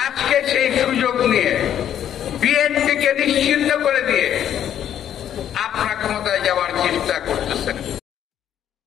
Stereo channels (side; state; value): right; quieter; 10.2 dB